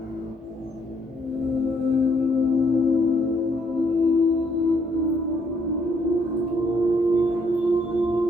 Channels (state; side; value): normal; both; correlation 0.69